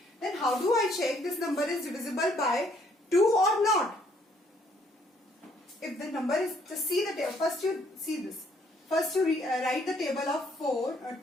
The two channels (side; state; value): both; normal; correlation 0.66